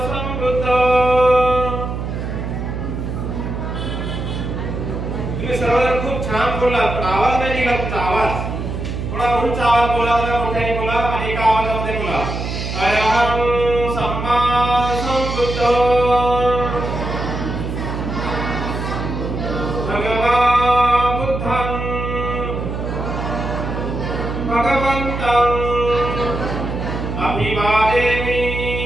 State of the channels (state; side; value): noise; right; hum, 4 dB below the sound